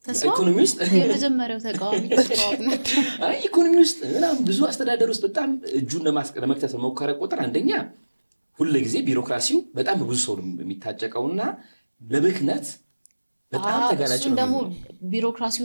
ኢኮኖሚ ውስጥ የመጀመሪያው ተቃዋሚ ኢኮኖሚ ውስጥ ምናምን ብዙ አስተዳደር ውስጥ በጣም እጁን ለመክተት በሞከረ ቁጥር አንደኛ ሁልጊዜ ቢሮክራሲው በጣም ብዙ ሰው የሚታጨቀውና ለብክነት በጣም ተጋላጭ ነው። ደግሞ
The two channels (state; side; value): inverted; both; correlation -1.00